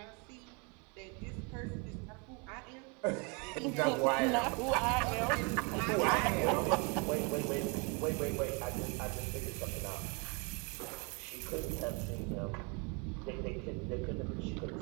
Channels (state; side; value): quieter; left; 31.8 dB